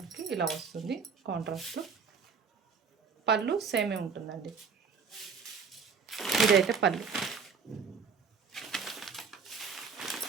ఇలా వస్తుంది కాంట్రాస్ట్. పళ్ళు సేమే ఉంటుందండి. ఇదైతే పళ్ళు.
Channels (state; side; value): quieter; left; 5.8 dB